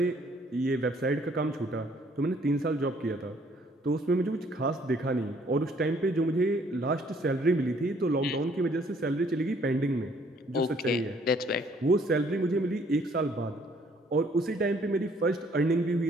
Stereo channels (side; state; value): both; normal; correlation 0.62